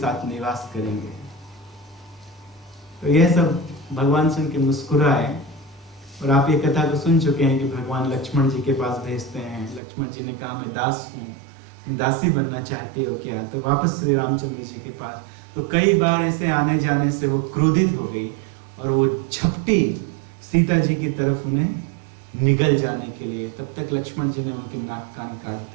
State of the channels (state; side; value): drops out; left; at 9.8 s